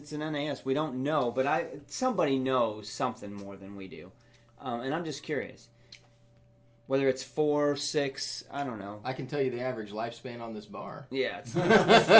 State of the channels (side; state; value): both; identical; correlation 1.00